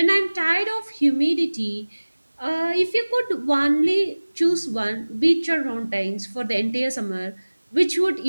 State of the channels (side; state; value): both; inverted; correlation -1.00